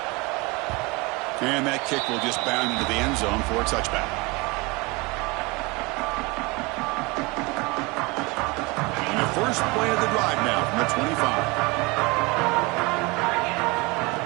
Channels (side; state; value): left; quieter; 25.3 dB